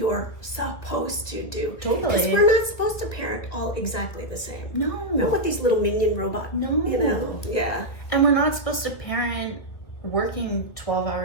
supposed to do? Totally. Because we're not supposed to parent all exactly the same. No. Not with these little minion robots. No. Yeah. And we're not supposed to parent working 12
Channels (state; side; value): late; right; 1.9 ms